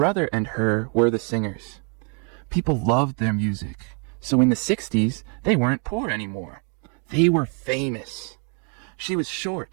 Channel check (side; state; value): left; quieter; 38.0 dB